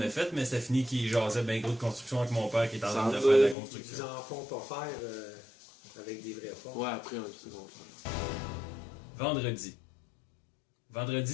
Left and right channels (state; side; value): drops out; right; at 3.6 s